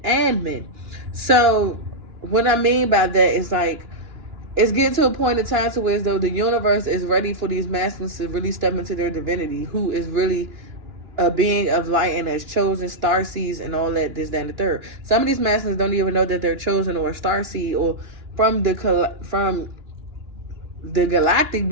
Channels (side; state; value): left; late; 2.9 ms